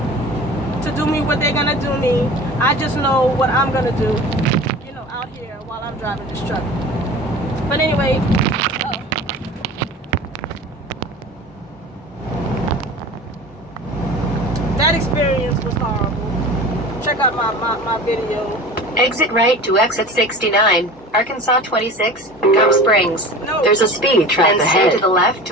do me what they're gonna do me. I just know what I'm gonna do, you know, out here while I'm driving this truck. But anyway, that experience was horrible. Check out my video. Exit right to exit 69, Arkansas 26, Gum Springs. No. There's a speed trap ahead. Stay to the left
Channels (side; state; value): both; normal; correlation 0.37